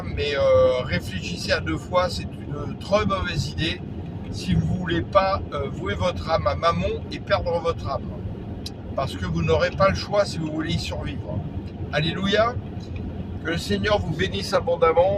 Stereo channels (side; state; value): both; identical; correlation 1.00